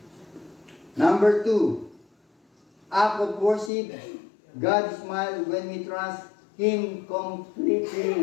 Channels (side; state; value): right; drops out; at 3.7 s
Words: Number 2, act of worship. God smiles when we trust Him